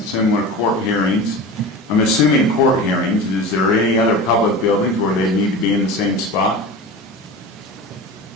court hearings. I'm assuming court hearings. Is there any other public buildings where they need to be in the same spot?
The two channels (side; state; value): both; normal; correlation 0.31